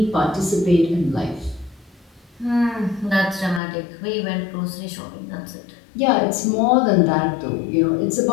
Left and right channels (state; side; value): drops out; right; at 3.6 s